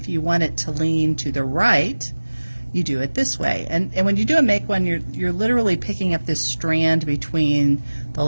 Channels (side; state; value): both; inverted; correlation -1.00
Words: you want it to lean to the right, you do it this way. And when you do a make one, you're literally picking up this strand between the